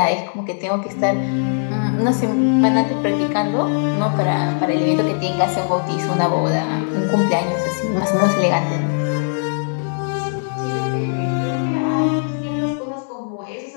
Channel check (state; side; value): silent; right; 63 dB below the other